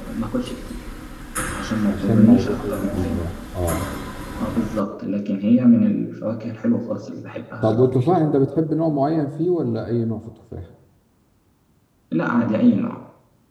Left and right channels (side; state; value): both; identical; correlation 1.00